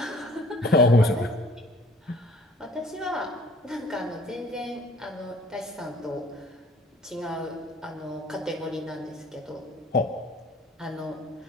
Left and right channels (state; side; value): normal; both; correlation 0.53